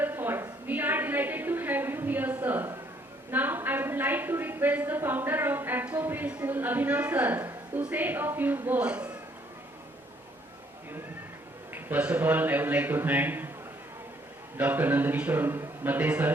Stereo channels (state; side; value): normal; both; correlation 0.66